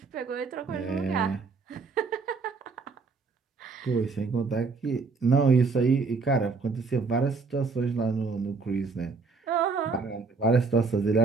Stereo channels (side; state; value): left; quieter; 4.6 dB